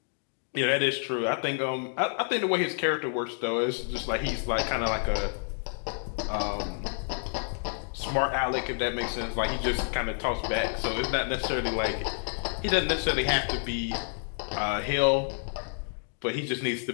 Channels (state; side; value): silent; right; digital silence